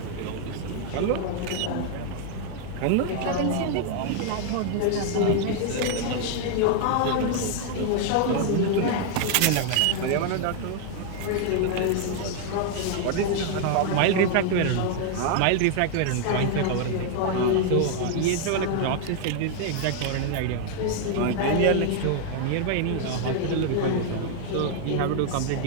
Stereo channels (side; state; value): both; different; correlation 0.00